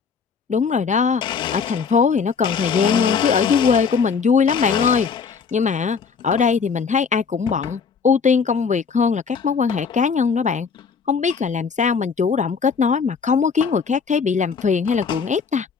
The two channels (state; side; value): quieter; right; 5.8 dB